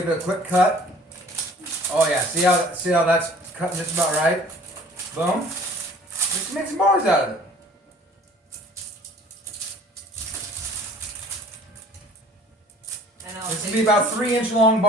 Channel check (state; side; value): normal; both; correlation 0.50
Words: it a quick cut. Oh yeah, see how that's cutting just about right? Boom. Just make some bars out of it. And This will be about 3-inch long